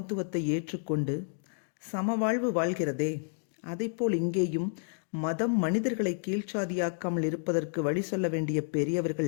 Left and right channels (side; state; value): right; silent; digital silence